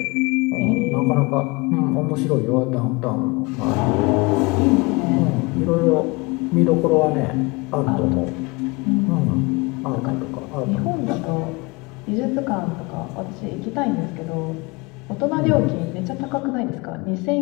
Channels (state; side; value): quieter; right; 26.0 dB